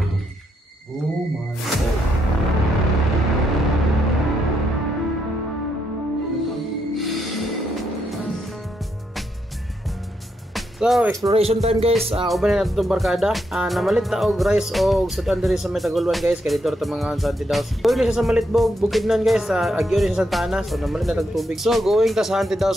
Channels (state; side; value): normal; both; correlation 0.79